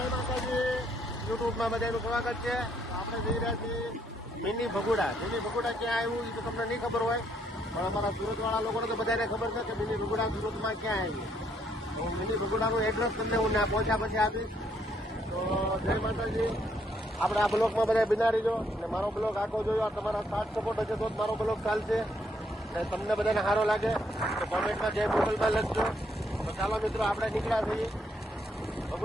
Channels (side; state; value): both; normal; correlation 0.72